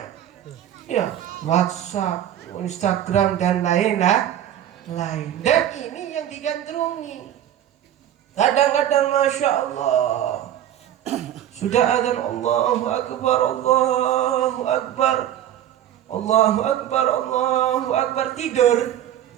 Ya, WhatsApp, Instagram dan lain. Dan ini yang digandrungi. Kadang-kadang Masya Allah, sudah adzan Allahu Akbar, Allahu Akbar, Allahu Akbar, Allahu Akbar, tidur,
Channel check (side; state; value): left; quieter; 11.2 dB